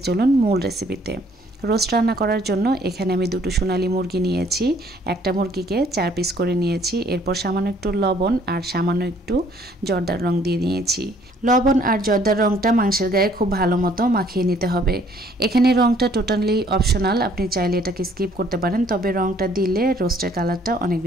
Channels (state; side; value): normal; both; correlation 0.61